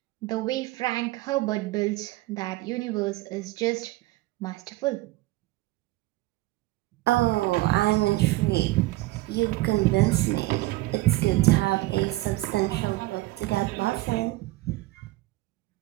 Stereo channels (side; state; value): left; quieter; 19.0 dB